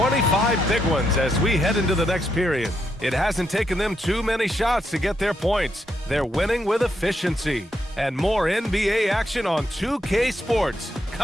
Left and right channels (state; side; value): normal; both; correlation 0.80